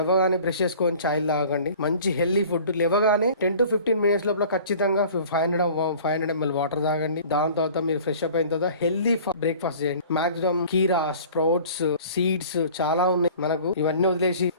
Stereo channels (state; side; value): inverted; both; correlation -0.47